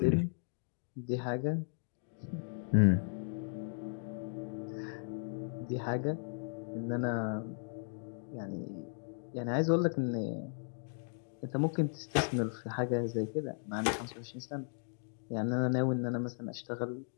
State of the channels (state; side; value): silent; right; digital silence